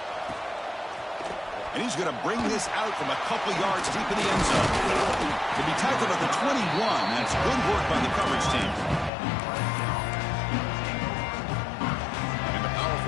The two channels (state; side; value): drops out; right; at 9.1 s